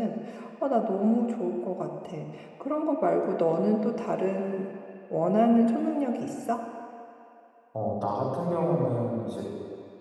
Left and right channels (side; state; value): both; identical; correlation 1.00